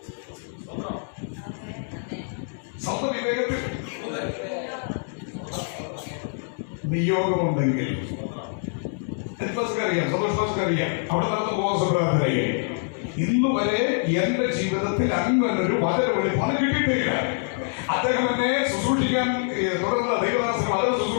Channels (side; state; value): right; silent; 62 dB below the other